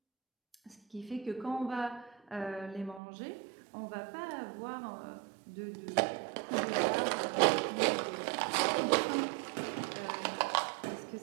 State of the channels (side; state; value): left; drops out; at 3.0 s